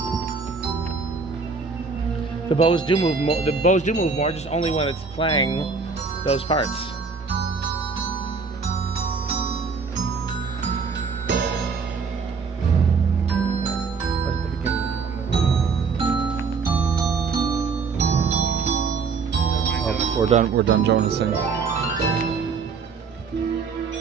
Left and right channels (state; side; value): quieter; left; 5.0 dB